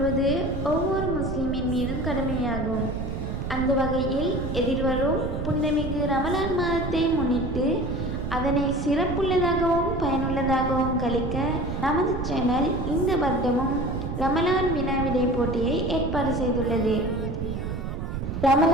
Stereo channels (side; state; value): right; noise; rumble, 4 dB below the sound